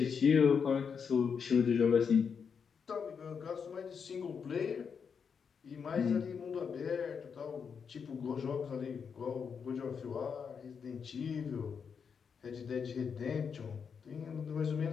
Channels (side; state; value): right; quieter; 6.4 dB